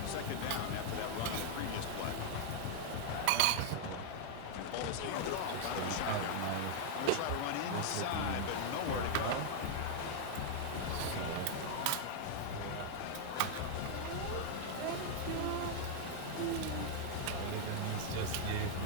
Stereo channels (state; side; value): different; both; correlation -0.01